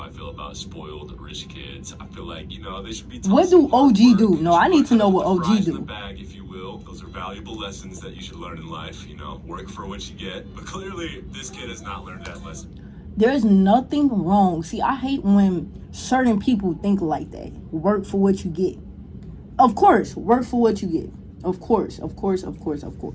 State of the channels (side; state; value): both; identical; correlation 1.00